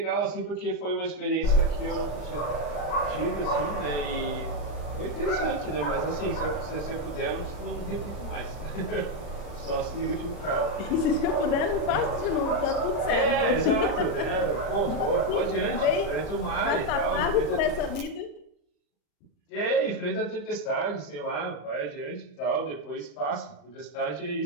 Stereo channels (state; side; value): late; right; 39 ms